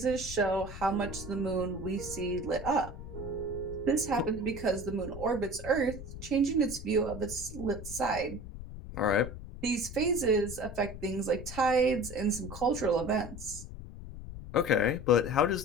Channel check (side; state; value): left; noise; rumble, 11 dB below the sound